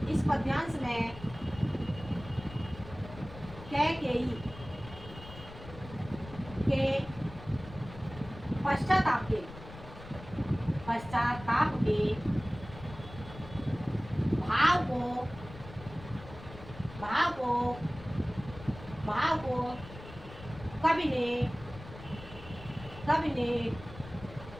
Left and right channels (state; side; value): noise; left; rumble, 15 dB below the sound